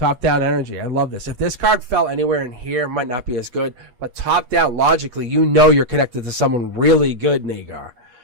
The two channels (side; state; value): left; late; 8.4 ms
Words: down energy. I love this. If this card fell anywhere in here, it might not be as good. But top down, logically, you know you're connected to someone really good, Nagar.